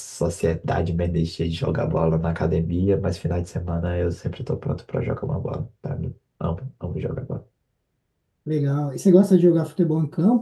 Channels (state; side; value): identical; both; correlation 1.00